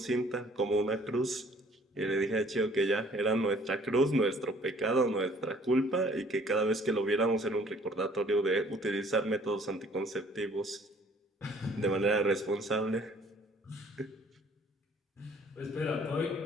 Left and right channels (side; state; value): both; normal; correlation 0.57